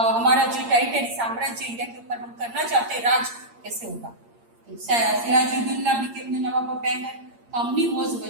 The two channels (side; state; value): left; late; 8.6 ms